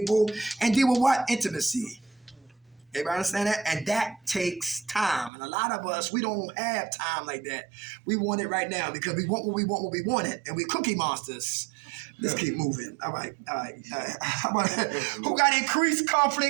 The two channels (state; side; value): drops out; left; at 5.3 s